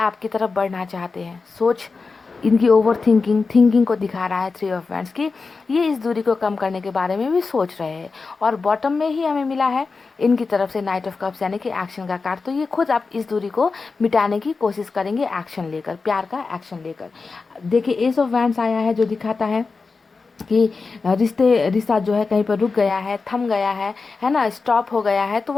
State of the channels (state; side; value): quieter; right; 4.4 dB